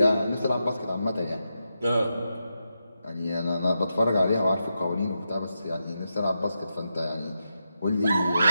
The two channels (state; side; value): inverted; both; correlation -0.87